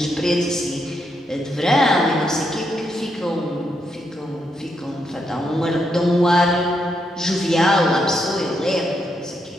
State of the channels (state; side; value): normal; both; correlation 0.80